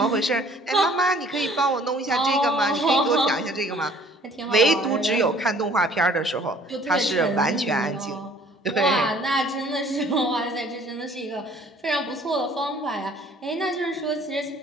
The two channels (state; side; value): normal; both; correlation 0.55